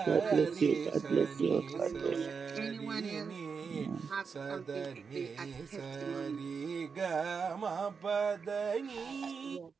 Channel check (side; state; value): left; quieter; 5.6 dB